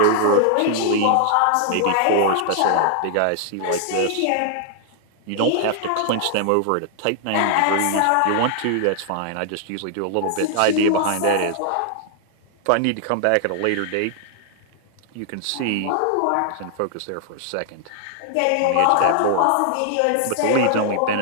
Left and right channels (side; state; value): both; different; correlation 0.00